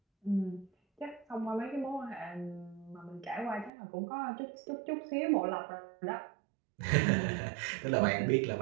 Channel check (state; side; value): drops out; left; at 3.7 s